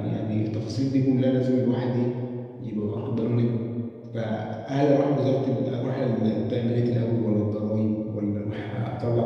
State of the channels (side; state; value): both; identical; correlation 1.00